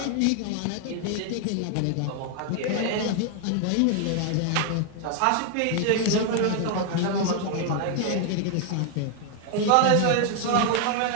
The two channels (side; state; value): both; different; correlation 0.00